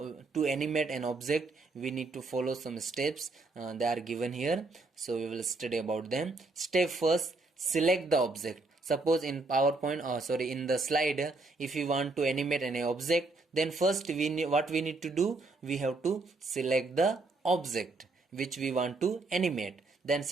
to animate an object we need to follow some steps, they are given here. So we will study about them. Step first, select the object. Suppose in PowerPoint in the slide, if you want to animate any object, then first what we need to do, we have to select the object which we want to animate. Then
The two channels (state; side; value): quieter; left; 3.4 dB